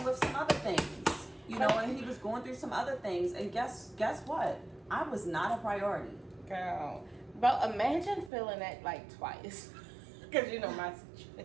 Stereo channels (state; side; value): drops out; left; at 8.3 s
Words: with some other things, you know, and he was going through some other things. And guess what? I was not a priority. Girl. But imagine feeling that like twice. Because you know my